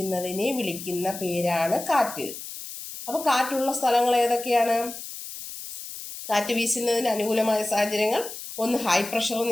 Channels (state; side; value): noise; left; hiss, 10 dB below the sound